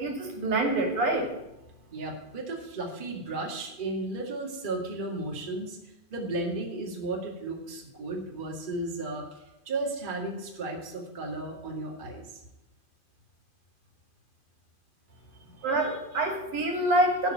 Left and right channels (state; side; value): late; right; 2.4 ms